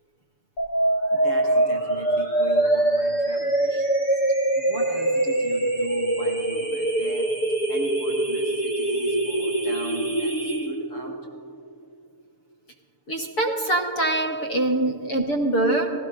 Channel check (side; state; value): right; late; 6.9 ms